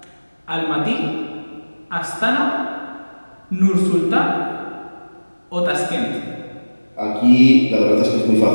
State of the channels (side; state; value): both; inverted; correlation -1.00